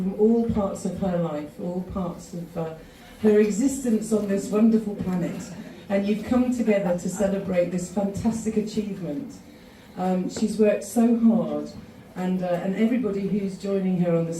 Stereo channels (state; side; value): identical; both; correlation 1.00